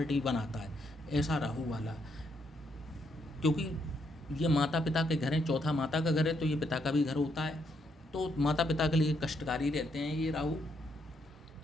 बनाता है। ऐसा राहु वाला, क्योंकि ये माता पिता के घर हैं, चौथा माता का घर है तो ये पिता का भी घर होता है, तो माता पिता के लिए कष्टकारी रहते हैं ये राहु।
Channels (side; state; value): both; normal; correlation 0.76